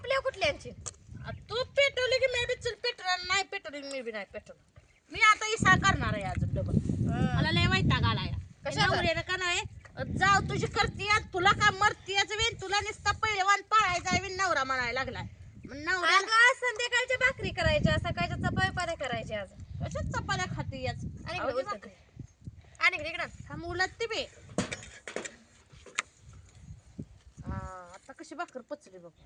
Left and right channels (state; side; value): identical; both; correlation 1.00